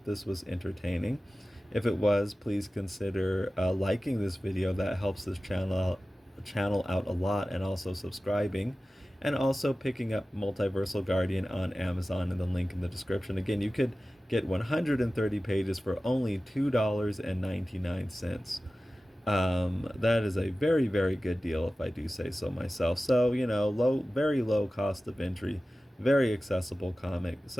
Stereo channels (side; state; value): both; normal; correlation 0.96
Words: this was entertaining. If it was, please consider liking this video. That helps this channel out a lot, and also subscribing, and also picking up Multiversal Guardian on Amazon in the link in the description. Again, you could get 130 pages for only $2.99. That is a very, very good deal if I do say so myself. So, very low cost of entry, very accessible comic.